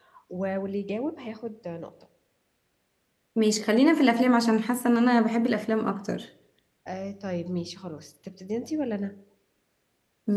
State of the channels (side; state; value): both; identical; correlation 1.00